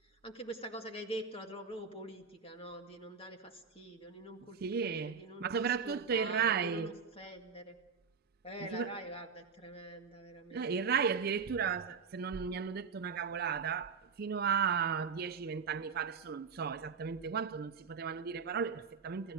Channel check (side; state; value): left; quieter; 5.8 dB